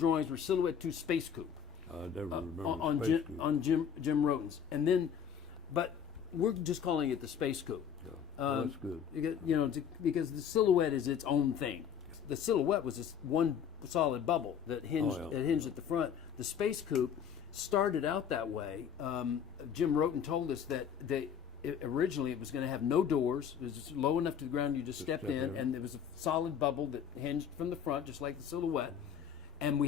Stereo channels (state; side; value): quieter; right; 7.9 dB